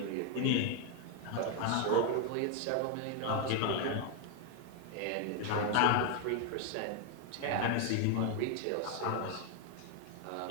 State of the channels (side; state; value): both; different; correlation 0.01